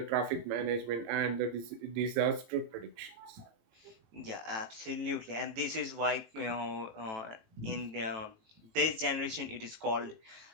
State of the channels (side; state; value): left; late; 18 ms